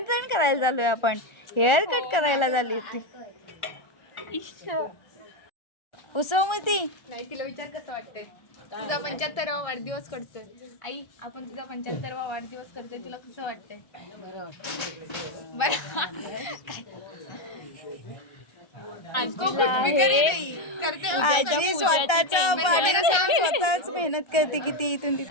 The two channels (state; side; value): late; right; 1.3 ms